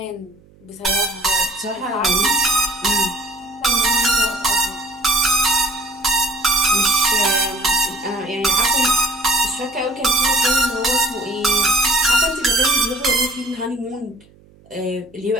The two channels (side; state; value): right; noise; hum, 28 dB below the sound